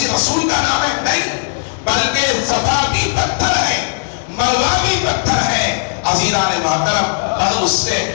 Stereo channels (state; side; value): silent; right; 66 dB below the other